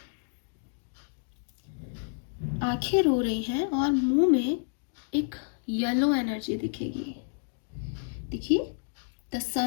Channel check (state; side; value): silent; right; digital silence